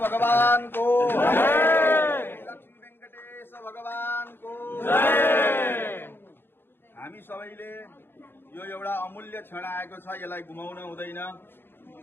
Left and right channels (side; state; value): right; late; 0.10 ms